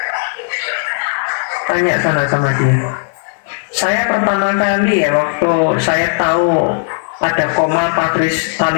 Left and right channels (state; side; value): silent; right; digital silence